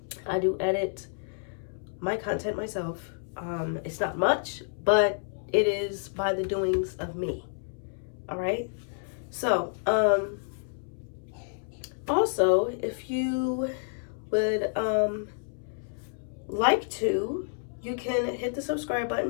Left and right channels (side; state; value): right; silent; 58 dB below the other